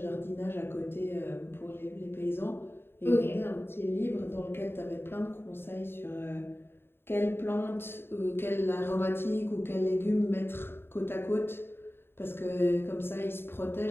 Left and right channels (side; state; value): right; late; 0.11 ms